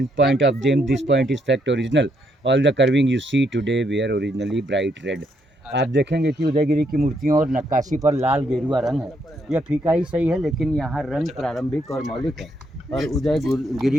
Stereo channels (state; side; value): normal; both; correlation 0.75